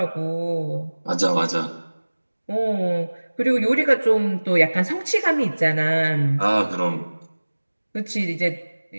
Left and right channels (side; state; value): both; inverted; correlation -1.00